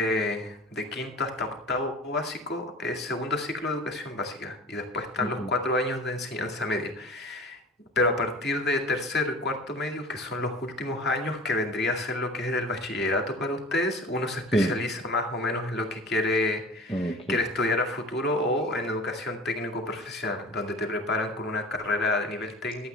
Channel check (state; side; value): normal; both; correlation 0.40